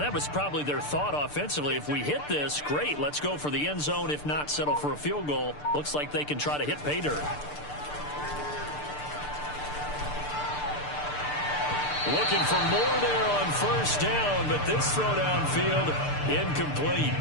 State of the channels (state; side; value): late; right; 6.8 ms